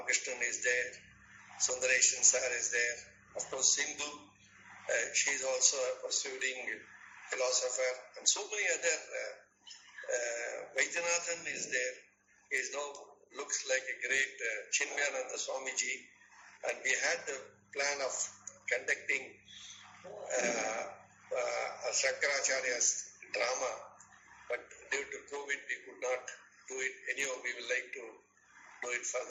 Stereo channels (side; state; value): both; identical; correlation 1.00